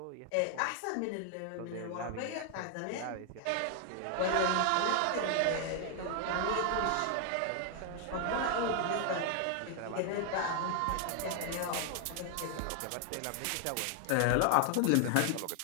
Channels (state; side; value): different; both; correlation 0.00